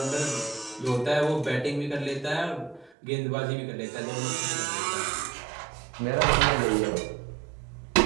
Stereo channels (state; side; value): drops out; left; at 2.9 s